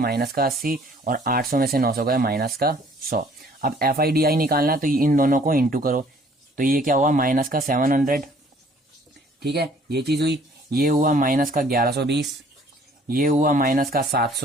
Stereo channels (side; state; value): both; normal; correlation 0.57